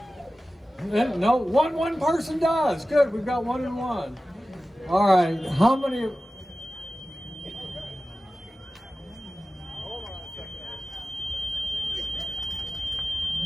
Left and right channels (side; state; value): both; normal; correlation 0.95